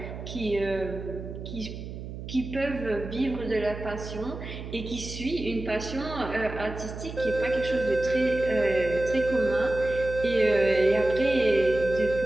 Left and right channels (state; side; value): noise; right; hum, 9 dB below the sound